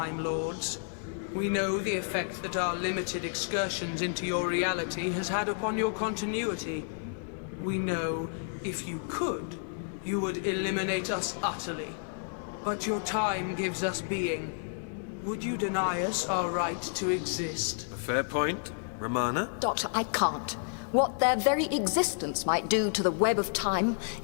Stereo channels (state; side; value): silent; right; digital silence